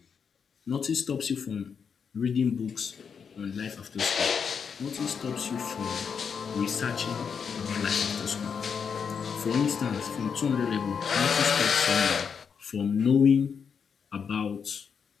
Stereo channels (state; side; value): quieter; right; 6.5 dB